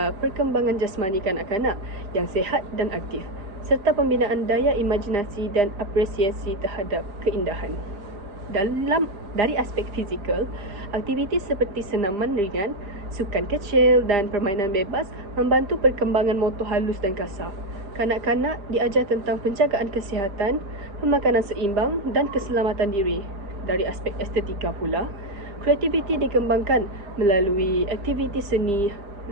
perkembangan jasmani kanak-kanak yang sihat dan aktif serta pembinaan daya imajinasi dan apresiasi terhadap keindahan. Dari aspek fizikal, aktiviti seperti senaman ringan, sukan kecil dan permainan bebas membantu perkembangan motor halus dan kasar. Kanak-kanak diajar tentang penjagaan kesihatan, pemakanan seimbang dan keselamatan diri. Dari aspek estetika pula, kreativiti dikembangkan melalui aktiviti seni,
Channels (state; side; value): late; left; 4.9 ms